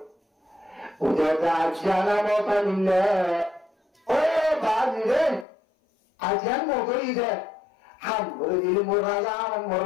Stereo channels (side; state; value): right; drops out; at 5.5 s